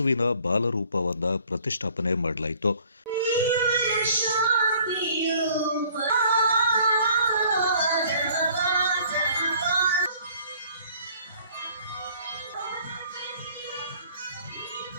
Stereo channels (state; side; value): inverted; both; correlation -0.56